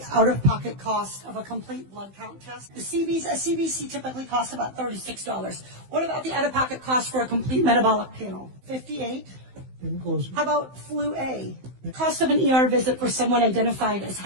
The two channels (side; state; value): left; late; 15 ms